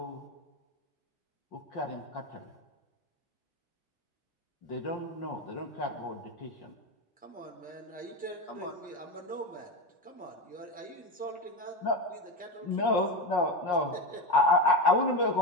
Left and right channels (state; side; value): normal; both; correlation 0.17